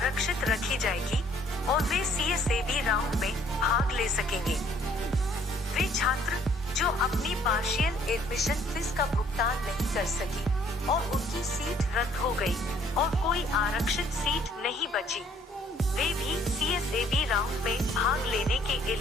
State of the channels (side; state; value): both; normal; correlation 0.61